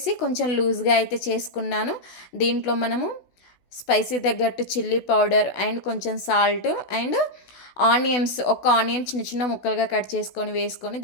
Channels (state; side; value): late; right; 16 ms